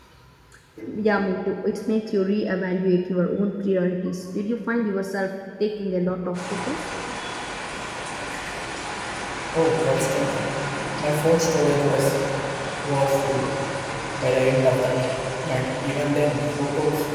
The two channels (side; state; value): both; identical; correlation 1.00